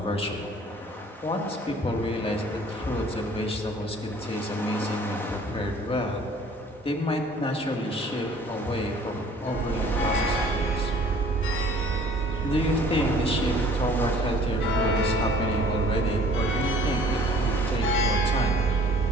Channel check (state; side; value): normal; both; correlation 0.52